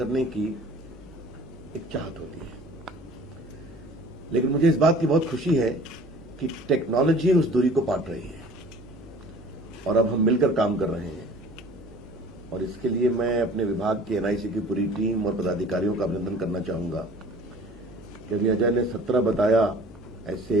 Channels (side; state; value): right; noise; hum, 21 dB below the sound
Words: की एक चाहत होती है। लेकिन मुझे इस बात की बहुत खुशी है कि टेक्नोलॉजी उस दूरी को पाट रही है और अब हम मिलकर काम कर रहे हैं, और इसके लिए मैं अपने विभाग के एनआईसी की पूरी टीम और पदाधिकारियों का अभिनंदन करना चाहूंगा कि अभी अजय ने 17 बताया